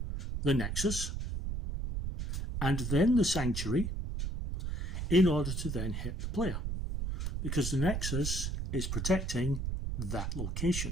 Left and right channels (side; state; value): right; noise; rumble, 3 dB below the sound